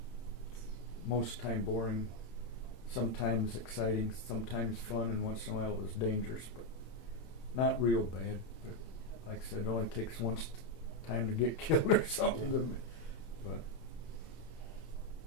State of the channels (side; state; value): right; late; 26 ms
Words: most time boring, sometimes exciting, sometimes fun, and once in a while it was dangerous, but not real bad. But like I said, it only takes once time to get killed or something to me. But